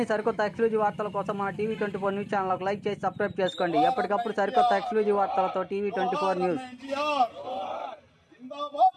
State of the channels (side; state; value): both; identical; correlation 1.00